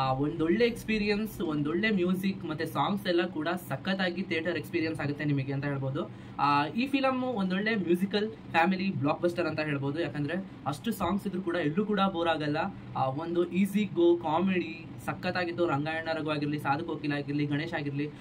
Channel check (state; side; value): identical; both; correlation 1.00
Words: ಒಂದೊಳ್ಳೆ ಎಕ್ಸ್ಪೀರಿಯನ್ಸ್, ಒಂದೊಳ್ಳೆ ಮ್ಯೂಸಿಕ್ ಮತ್ತೆ ಸಾಂಗ್ಸ್ ಎಲ್ಲ ಕೂಡ ಸಖತ್ತಾಗಿ ಥಿಯೇಟರ್ ಎಕ್ಸ್ಪೀರಿಯನ್ಸ್ ಆಗುತ್ತೆ ನಿಮಗೆ ಅಂತ ಹೇಳ್ಬೋದು. ಈ ಫಿಲಮ್ ಒಂದೊಳ್ಳೆ ಮ್ಯೂಸಿಕಲ್ ಫ್ಯಾಮಿಲಿ ಬ್ಲಾಕ್ ಬಸ್ಟರ್ ಅಂತ ಹೇಳ್ಬೋದು. ಯಾಕಂದ್ರೆ ಅಷ್ಟು ಸಾಂಗ್ಸ್ ಇದ್ರು ಕೂಡ ಎಲ್ಲೂ ಕೂಡ ಬೋರ್ ಆಗಲ್ಲ. ಒಂದು ಈಸಿ ಗೋ ಕಾಮಿಡಿ ಸಖತ್ತಾಗಿತ್ತು. ರಂಗಾಯಣ ರಘು ಆಗಿರ್ಲಿ, ಸಾಧು ಕೋಕಿಲ ಆಗಿರ್ಲಿ, ಗಣೇಶ್ ಆಗಿರ್ಲಿ,